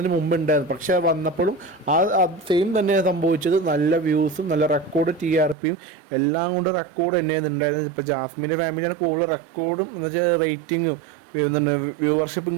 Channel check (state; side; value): drops out; left; at 5.6 s